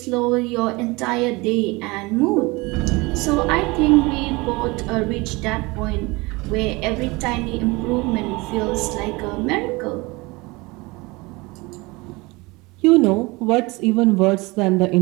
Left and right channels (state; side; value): quieter; left; 24.2 dB